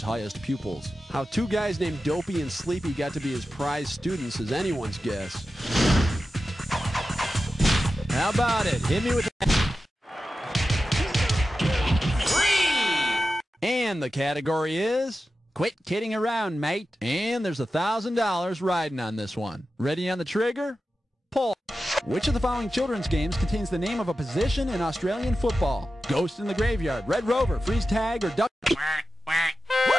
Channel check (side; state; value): both; normal; correlation 0.92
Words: highest pupils. How 2 guys named Dopey and Sleepy got to be his prize students is anyone's guess. How about it? Hit me with that. And the category is quit kidding around, mate. And there's $1,000 riding on this one. Ready on the trigger? Pull. Which of the following children's games contains the name of a position in Australian football? Ghost in the Graveyard, Red Rover, Freeze Tag, or Duck...